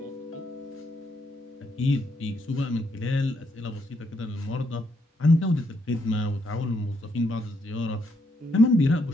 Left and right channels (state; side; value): normal; both; correlation 0.76